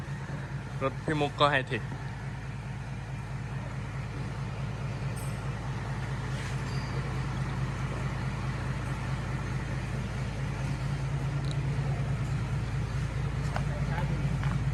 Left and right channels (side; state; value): both; identical; correlation 1.00